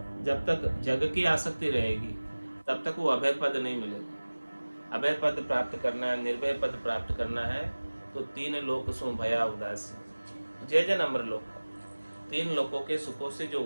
जब तक जग की आसक्ति रहेगी तब तक वो अभय पद नहीं मिलेगा। अभय पद प्राप्त करना है, निर्भय पद प्राप्त करना है, तो 3 लोक सो भया उदासी, जय जन अमर लोक। 3 लोकों के सुखों से जो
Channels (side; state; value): both; inverted; correlation -1.00